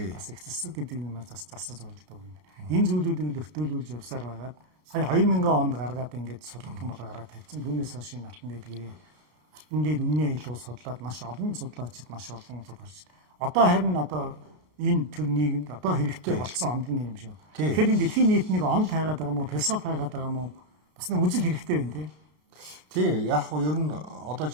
их зэсэг гэдэг юм бас засаж болдог юм. Энэ зүйлүүдийг л өртөөлүүлж явсаар байгаад сая 2000 онд гаргаад ингээд судалгын бол гараад тавьсан. Түүнээс хойш энэ алтан дээлгэрийн алтан дээр үнний аялал судлаад маш олон судлаачид маш олон судалж. Одоо харин энэ төр нийгэмд одоо хэрэгтэй болсон онол юм шүү. Тэгэхээр энэ дэлхийн нийтнийг онол хайгаад байгаа юм уу, философи хайгаад байгаа юм уу? Бас нэг үжил хэрэгтэй байна тий. Тий, яг нь ер нь одоо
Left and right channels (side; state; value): left; late; 33 ms